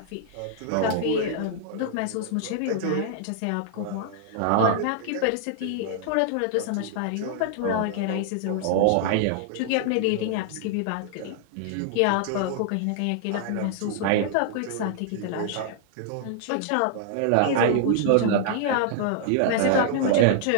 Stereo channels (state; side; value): different; both; correlation -0.01